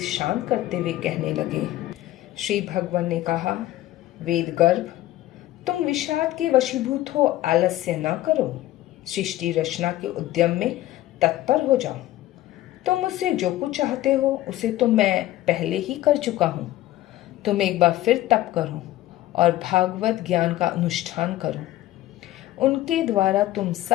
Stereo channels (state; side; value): quieter; right; 15.2 dB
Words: शांत करते हुए कहने लगे। श्री भगवान ने कहा, वेद गर्भ, तुम विषाद के वशीभूत हो, आलस्य न करो, सृष्टि रचना के उद्यम में तत्पर हो जाओ। तुम मुझसे जो कुछ चाहते हो उसे तो मैं पहले ही कर चुका हूँ। तुम एक बार फिर तप करो और भागवत ज्ञान का अनुष्ठान करो। उनके द्वारा तुम